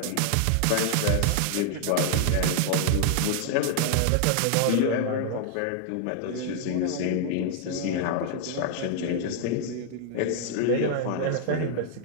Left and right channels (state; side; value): different; both; correlation 0.00